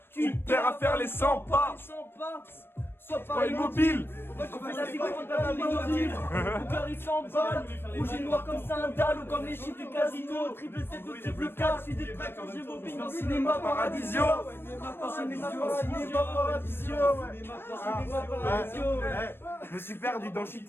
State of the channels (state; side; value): late; right; 0.11 ms